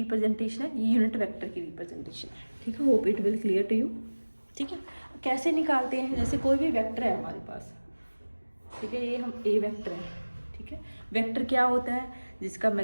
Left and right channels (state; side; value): inverted; both; correlation -1.00